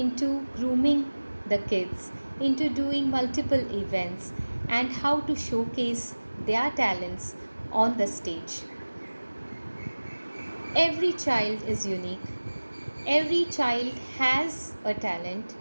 grooming the kids into doing multiple events and how to showcase their talents on the stage. Every child is unique. Every child has a talent,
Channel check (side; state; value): both; inverted; correlation -1.00